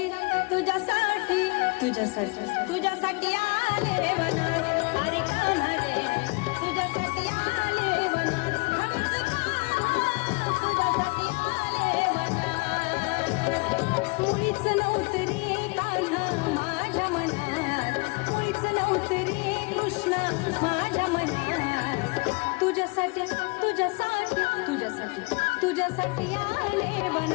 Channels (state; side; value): quieter; right; 28.9 dB